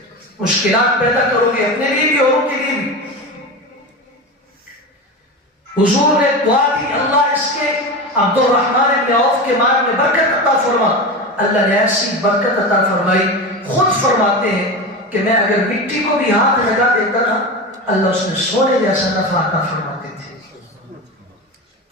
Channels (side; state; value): both; normal; correlation 0.24